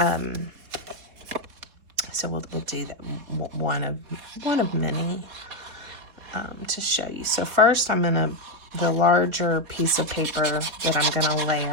So we'll do that, one of many to show you. So first, the larger piece of paper that I'm gonna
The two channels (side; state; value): left; late; 4.2 ms